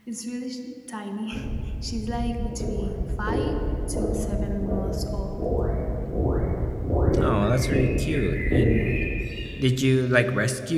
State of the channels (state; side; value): identical; both; correlation 1.00